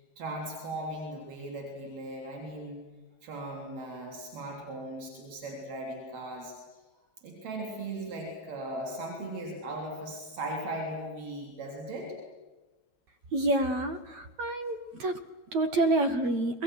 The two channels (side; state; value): left; late; 9.5 ms